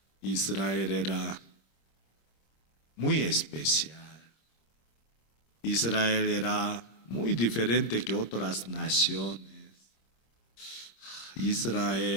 Israel era muy especial. Israel era muy diferente que otras naciones.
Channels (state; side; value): late; right; 26 ms